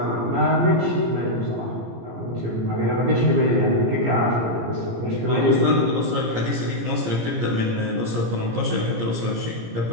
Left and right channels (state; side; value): late; left; 17 ms